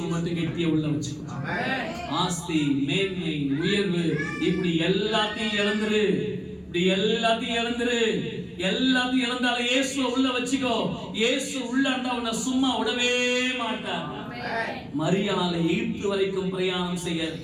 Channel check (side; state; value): both; identical; correlation 1.00